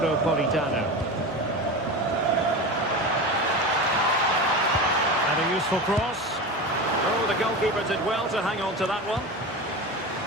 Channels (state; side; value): normal; both; correlation 0.26